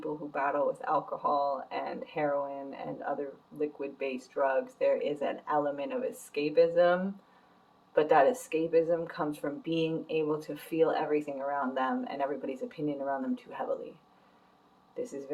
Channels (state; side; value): identical; both; correlation 1.00